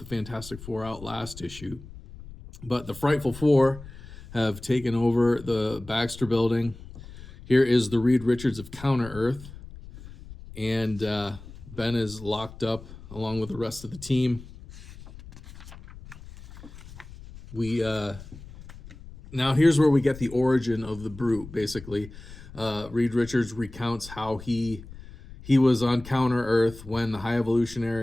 Fantastic Four out last issue. But the Frightful Four have taken over the Baxter Building. Here is the Reed Richards of Counter Earth, and Ben is locked up along with the rest of the team. Now here's where we get the origin of the Brute. Basically, Reed Richards recounts how he was on Counter Earth when the High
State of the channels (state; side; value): noise; left; rumble, 16 dB below the sound